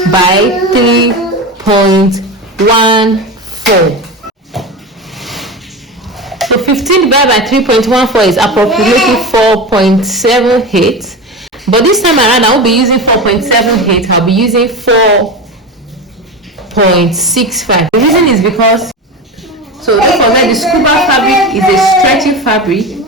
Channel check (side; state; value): both; normal; correlation 0.24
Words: by 3.14. So 15 divided by 3.14 is approximately 4.78. But this time around, I won't be using 4.78. I'll be using 4.65. The reason is because, so don't forget, the scuba fabric is a stretchy fabric,